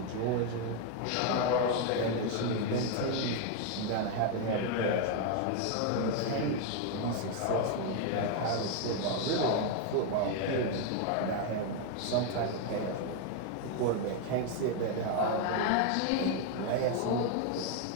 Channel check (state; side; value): different; both; correlation 0.01